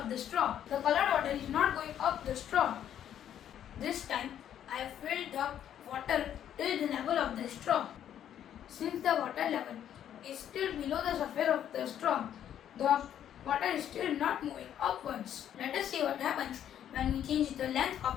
the straw. The colored water is not going up the straw. This time I have filled the water till the level of the straw. Since the water level is still below the surface of the straw, the water is still not moving upwards. Let us see what happens when we change the length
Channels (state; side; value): quieter; right; 10.2 dB